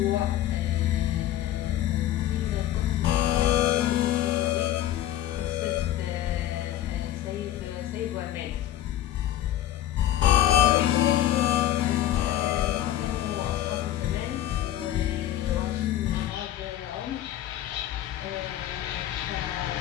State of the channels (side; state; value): right; quieter; 12.8 dB